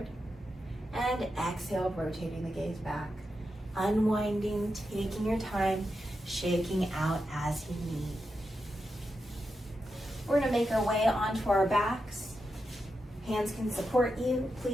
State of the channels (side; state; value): both; normal; correlation 0.88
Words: And exhale, rotating the gaze back. Unwinding, taking your time, shaking out as you need. We're gonna make our way onto our backs. Hands can support you.